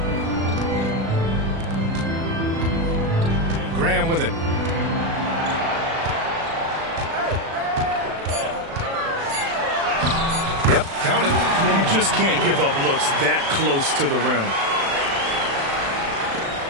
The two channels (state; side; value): late; left; 36 ms